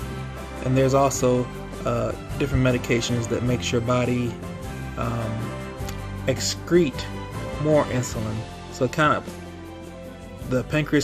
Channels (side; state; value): both; identical; correlation 1.00